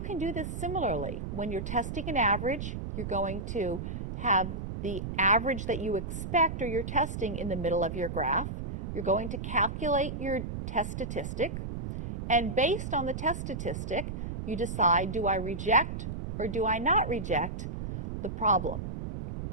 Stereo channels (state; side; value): noise; right; rumble, 6 dB below the sound